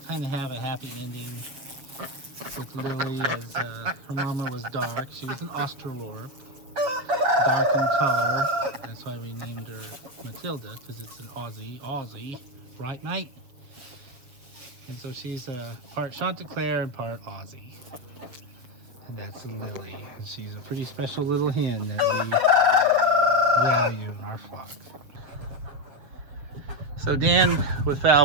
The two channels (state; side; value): late; left; 7.4 ms